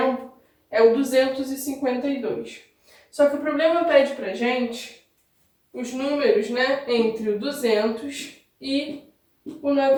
é o 252. Só que o problema pede pra gente os números, né, entre o 200 e o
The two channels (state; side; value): identical; both; correlation 1.00